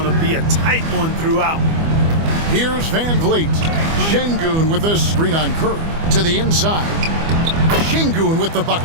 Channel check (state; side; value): late; left; 25 ms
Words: to be a tight one throughout. Here's Van Vliet. Sengun with a screen on Curry. To the inside. Sengun with the